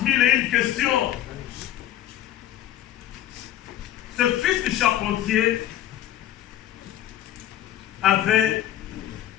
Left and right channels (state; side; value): quieter; right; 12.3 dB